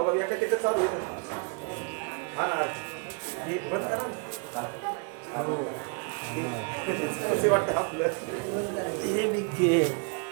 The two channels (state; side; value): quieter; left; 36.3 dB